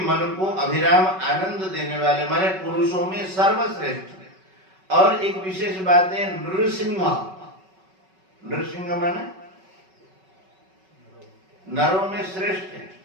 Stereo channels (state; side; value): late; left; 5.3 ms